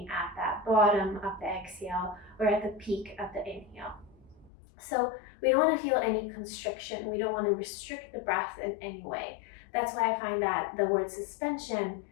at that bottom of the exhale or at the peak of the inhale. So we don't want to feel any constriction. We don't want to restrict the breath in any way. That's why I find that the word suspension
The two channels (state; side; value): drops out; right; at 4.5 s